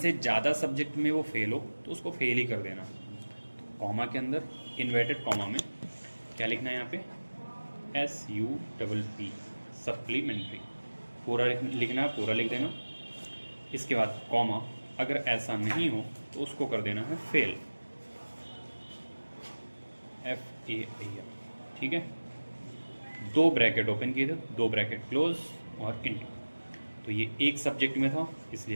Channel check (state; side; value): inverted; both; correlation -1.00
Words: ज़्यादा सब्जेक्ट में वो फेल हो तो उसको फेल ही कर देना। कॉमा के अंदर इन्वर्टेड कॉमा में क्या लिखना है, यहाँ पे SUPP सप्लीमेंट्री, पूरा लिखना है, पूरा लिख देना। इसके बाद कॉमा, अगर ऐसा नहीं हो तो उसको कर देना है फेल, FAIL, ठीक है। 2 ब्रैकेट ओपन किए थे, 2 ब्रैकेट क्लोज और इंटर, तो ये एक सब्जेक्ट में था